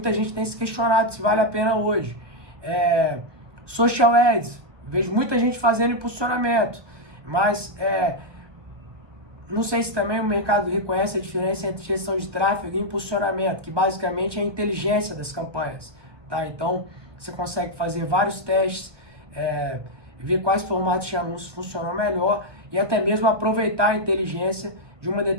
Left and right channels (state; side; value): late; left; 1.3 ms